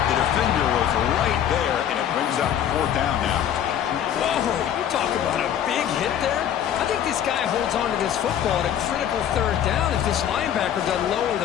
The defender was right there, and it brings up 4th down now. Whoa, you talk about a big hit there. I think this guy holds on to this football at a critical third down if this linebacker doesn't lower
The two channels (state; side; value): quieter; right; 9.9 dB